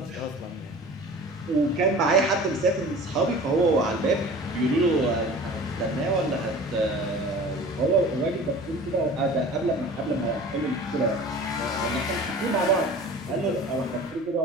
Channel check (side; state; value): right; noise; rumble, 28 dB below the sound